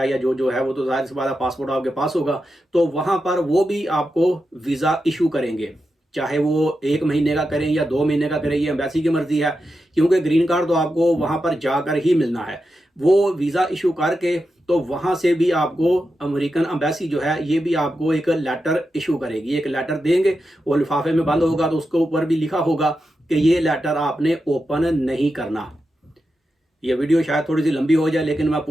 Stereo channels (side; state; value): both; normal; correlation 0.89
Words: या जो है वो तो जाहिर सी बात है पासपोर्ट आपके पास होगा। तो वहाँ पर वो भी आपको वीज़ा इशू करेंगे, चाहे वो 1 महीने का करें या 2 महीने का करें, ये एम्बेसी की मर्जी है, क्योंकि ग्रीन कार्ड तो आपको वहाँ पर जाकर ही मिलना है। वो वीज़ा इशू करके तो वहाँ से भी आपको अमेरिकन एम्बेसी जो है ये भी आपको एक लेटर इशू करेगी, एक लेटर देंगे, वो लिफाफे में बंद होगा, तो उसके ऊपर भी लिखा होगा कि ये लेटर आपने ओपन नहीं करना। ये वीडियो शायद थोड़ी सी लंबी हो जाए, लेकिन मैं